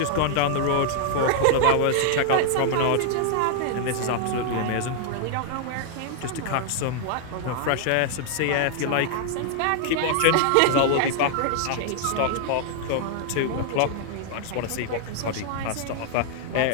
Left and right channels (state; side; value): different; both; correlation 0.00